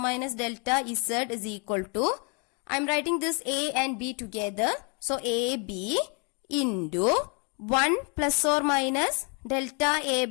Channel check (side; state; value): right; quieter; 35.5 dB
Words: delta Z is equal to, I am writing this A and B together. So AB into 1 plus or minus delta A